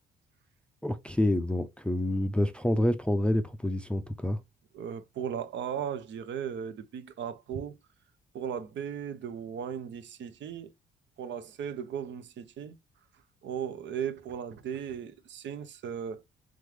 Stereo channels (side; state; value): both; normal; correlation 0.76